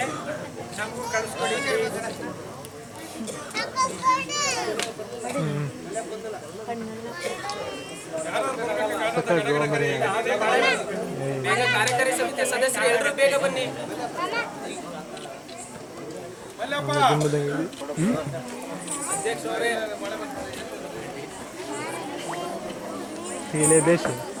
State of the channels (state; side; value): identical; both; correlation 1.00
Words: ನಮಗೂ ಕಳಿಸ್ಕೊಡಿ. ಬೇಗ ಕಾರ್ಯಕಾರಿ ಸಮಿತಿಯ ಸದಸ್ಯರು ಎಲ್ಲರೂ ಬೇಗ ಬನ್ನಿ. ಅಧ್ಯಕ್ಷರೇ,